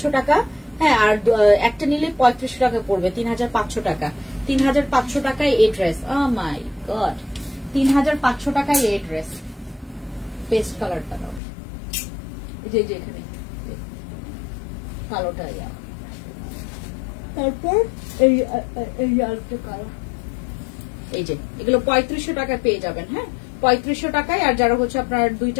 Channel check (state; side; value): drops out; right; at 11.4 s